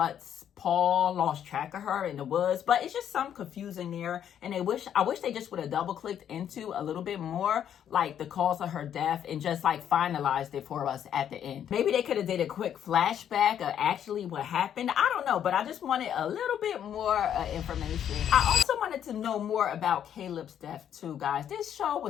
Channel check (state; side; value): quieter; right; 9.5 dB